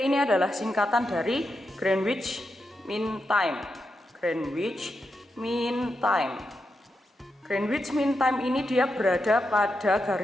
ini adalah singkatan dari Greenwich Mean Time. Greenwich Mean Time. Greenwich Mean Time ini dia berada pada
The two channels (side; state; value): both; normal; correlation 0.86